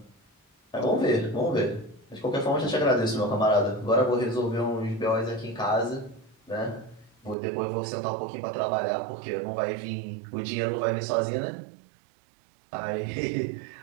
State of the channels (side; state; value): left; drops out; at 7.4 s